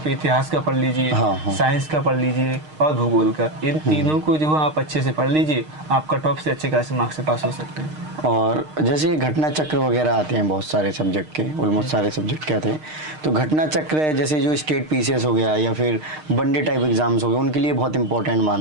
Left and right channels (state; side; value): late; left; 6.5 ms